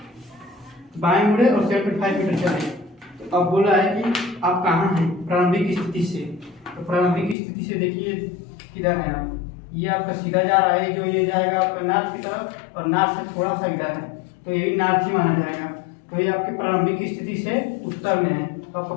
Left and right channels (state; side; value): drops out; right; at 7.4 s